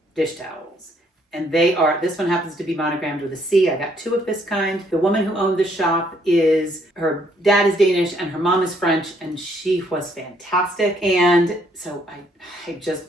dish towels. And this one happens to be monogrammed with a C. I got 2 of this kind. The woman who owned the shop her dad is Danish and her mom is French, and she was fantastic. And so I just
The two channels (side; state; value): both; normal; correlation 0.68